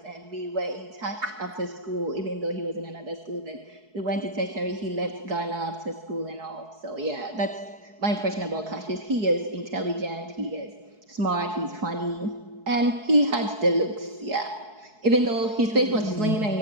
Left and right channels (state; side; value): late; left; 4.7 ms